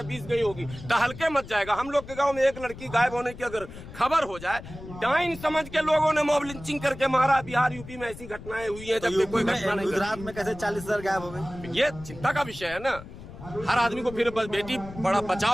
20 गई होगी, तो हल्के मत जाएगा। हम लोग के गांव में एक लड़की गायब होने की अगर खबर हो जाए, डाइन समझ के लोगों ने मॉब लिंचिंग करके मारा। बिहार, यूपी में ऐसी घटनाएं हुई हैं, जबकि कोई घटना नहीं। गुजरात में कैसे 40,000 गायब हो गए? ये चिंता का विषय है ना। हर आदमी को फिर बेटी बड़ा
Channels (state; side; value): noise; left; rumble, 14 dB below the sound